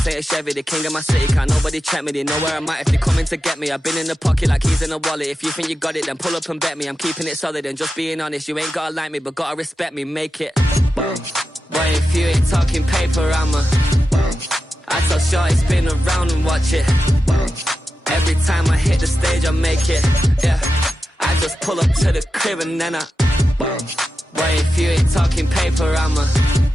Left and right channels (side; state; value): both; normal; correlation 0.91